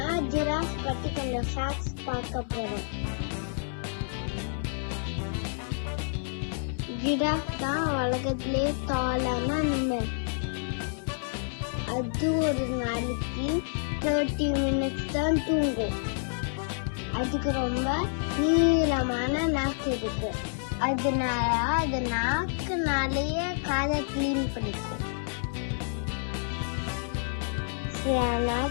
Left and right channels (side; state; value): right; silent; 59 dB below the other